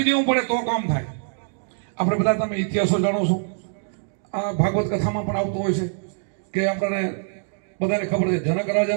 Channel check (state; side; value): silent; left; digital silence